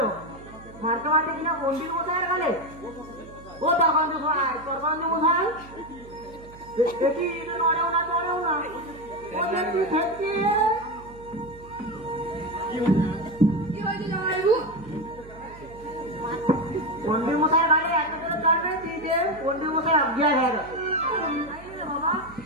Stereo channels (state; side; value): noise; right; hum, 19 dB below the sound